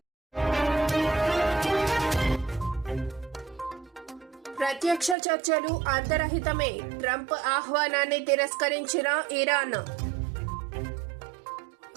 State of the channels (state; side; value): drops out; left; at 5.2 s